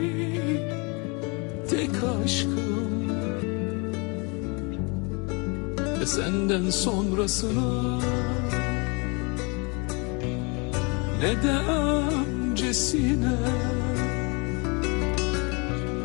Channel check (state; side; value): quieter; right; 30.9 dB